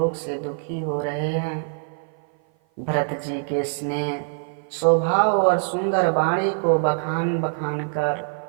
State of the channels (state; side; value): silent; left; 55 dB below the other